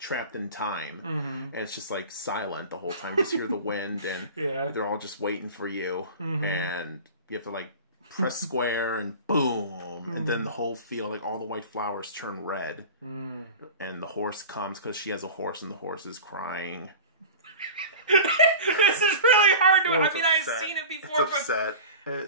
time, and it's just like silent the whole time. Just hear the wind, and they're all just waiting for you, and you have to like press square and boom, and then the whole field, like all the white flowers turn red, and the horse comes because she has a horse, and the horse is crying. This is really hard to... I mean, I've seen it before, it's upset.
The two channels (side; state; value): both; inverted; correlation -0.35